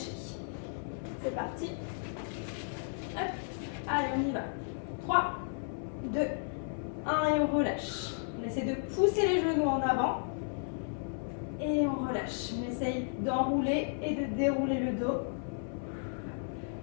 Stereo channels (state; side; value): silent; right; 55 dB below the other